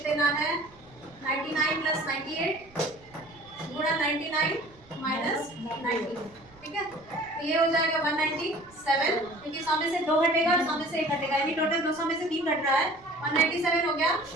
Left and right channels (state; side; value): noise; right; rumble, 26 dB below the sound